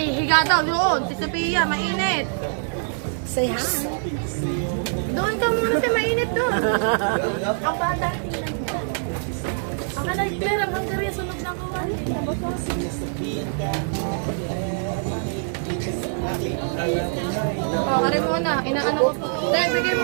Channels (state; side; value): silent; left; digital silence